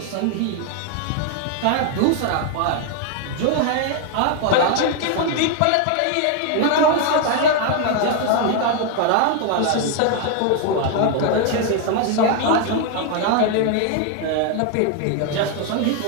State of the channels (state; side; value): different; both; correlation 0.00